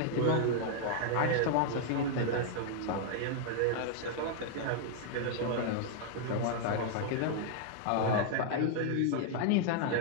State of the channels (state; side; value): different; both; correlation -0.01